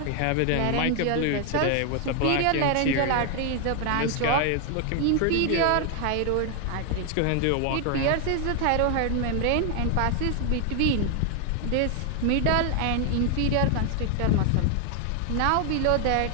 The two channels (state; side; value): different; both; correlation 0.00